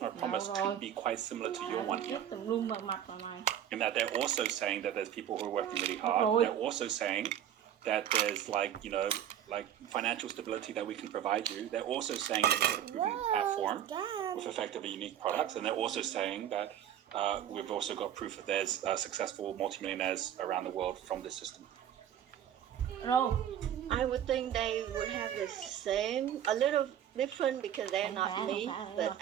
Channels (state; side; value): quieter; left; 10.4 dB